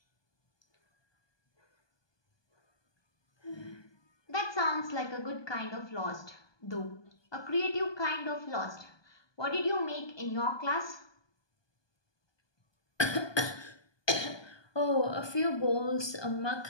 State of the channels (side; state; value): right; late; 1.2 ms